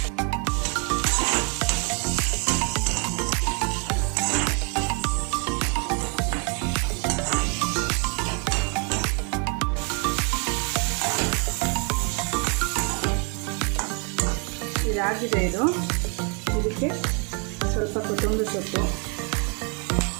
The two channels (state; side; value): quieter; left; 36.1 dB